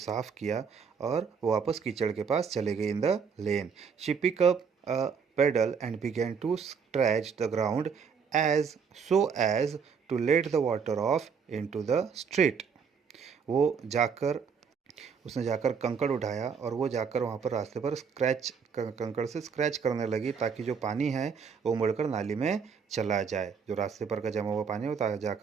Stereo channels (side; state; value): left; quieter; 6.2 dB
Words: किया और वो वापस कीचड़ के पास चले गई in the lane. She pick up a paddle and began to scratch the ground as so as to let the water off into the street. वो जाकर उसने जाकर कंकड़ उठाया और वो जाकर वहाँ पर रास्ते पर कंकड़ से स्क्रैच करने लगी, ताकि जो पानी है वो मुड़कर नाली में चला जाए। जो रास्ते पर का जमा हुआ पानी है वो